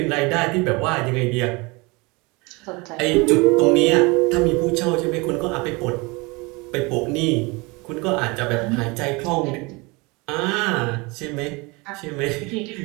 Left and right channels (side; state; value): left; quieter; 26.2 dB